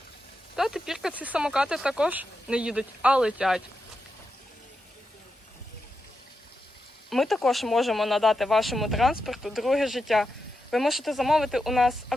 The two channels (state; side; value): normal; both; correlation 0.87